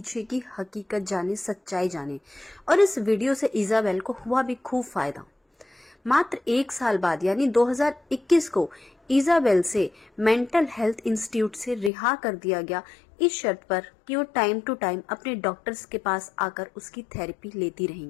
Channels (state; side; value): drops out; right; at 11.9 s